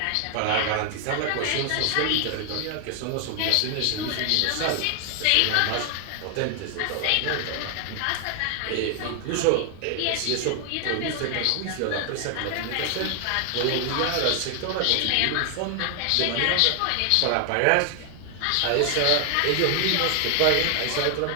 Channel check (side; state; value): both; different; correlation 0.00